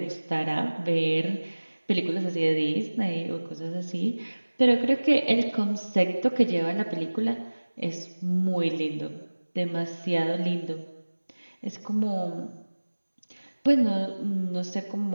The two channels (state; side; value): inverted; both; correlation -1.00